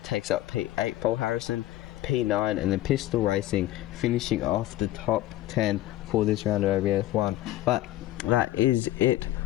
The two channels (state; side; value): quieter; right; 15.0 dB